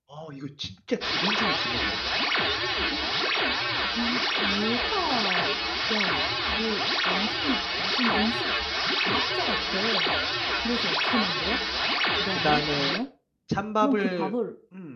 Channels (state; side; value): identical; both; correlation 1.00